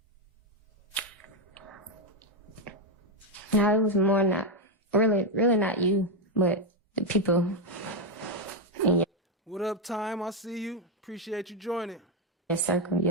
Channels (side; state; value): both; normal; correlation 0.05